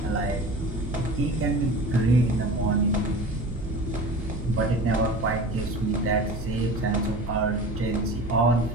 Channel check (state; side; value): noise; right; hum, 9 dB below the sound